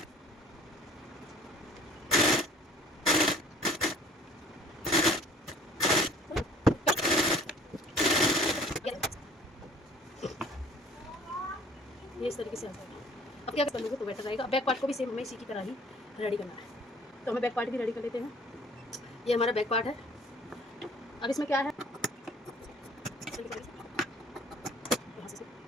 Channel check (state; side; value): normal; both; correlation 0.52